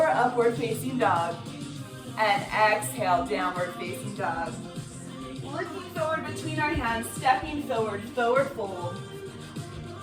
upward facing dog, and exhale, downward facing dog. Looking forward between our hands, stepping forward, forward fold.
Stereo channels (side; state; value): both; identical; correlation 1.00